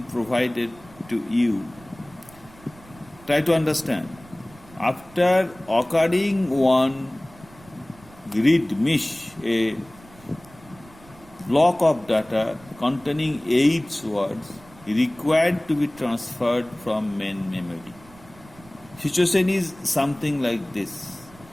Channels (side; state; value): right; noise; rumble, 23 dB below the sound